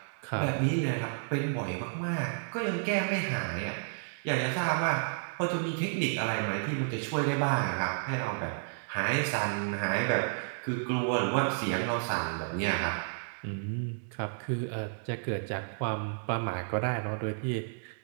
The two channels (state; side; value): silent; left; digital silence